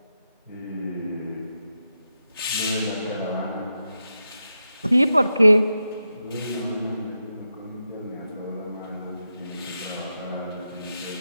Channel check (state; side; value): inverted; both; correlation -0.87